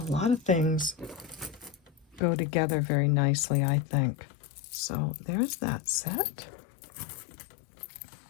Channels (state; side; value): drops out; right; at 2.2 s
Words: lot of things go together very nicely, I think. So there's that set.